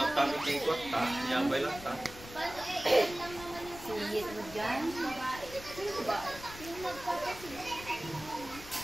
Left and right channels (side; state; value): left; noise; rumble, 15 dB below the sound